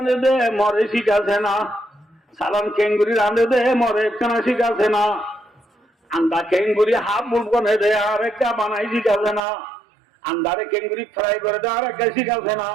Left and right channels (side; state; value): left; drops out; at 9.4 s